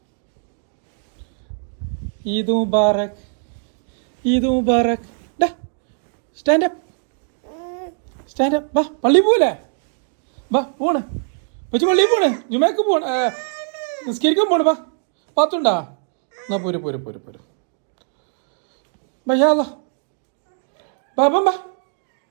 ഈദ് മുബാറക് ഈദ് മുബാറക്. Stand up stand up. വാ പള്ളി പോലെ വാ പോണ് വെച്ച് പള്ളി പോണ് ജുമേക്ക് പോണ് നിസ്കരിക്കാൻ പോണ്. വാ പാത്തുണ്ടാ എന്നാ പോര് പോര് പോര് പോര് ഭയ്യാ ബാബാ ബാ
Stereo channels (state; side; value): silent; left; digital silence